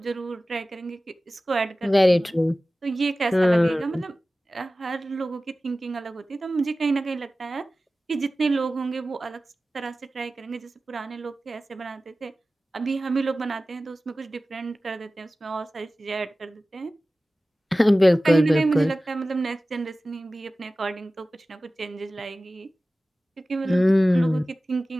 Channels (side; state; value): both; normal; correlation 0.96